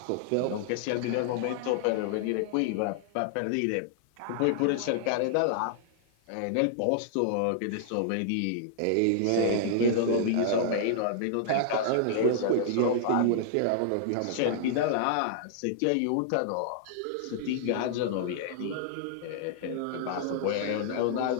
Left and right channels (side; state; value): both; different; correlation -0.01